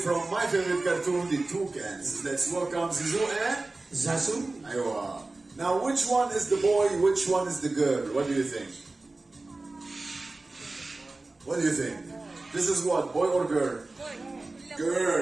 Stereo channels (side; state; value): left; quieter; 3.2 dB